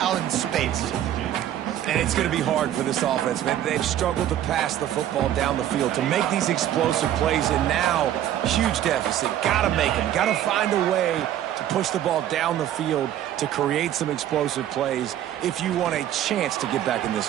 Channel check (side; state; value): left; quieter; 11.7 dB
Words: out in space. And it's going to be hard for this offense, man. They've struggled to pass the football down the field, to make these explosive plays, and now, huge deficit. Got to make them. Got to find a way to push the ball down the field to create some explosive plays if you want a chance to get back in this